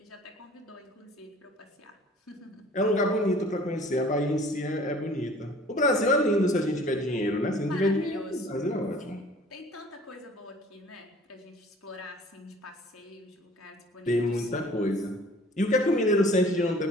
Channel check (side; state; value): both; normal; correlation 0.50